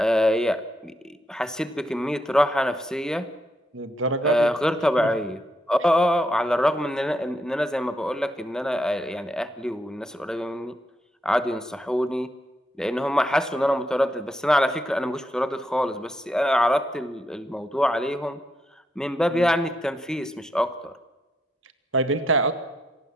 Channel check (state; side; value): normal; both; correlation 0.79